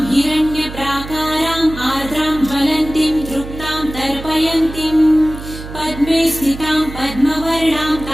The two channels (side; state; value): right; noise; hum, 12 dB below the sound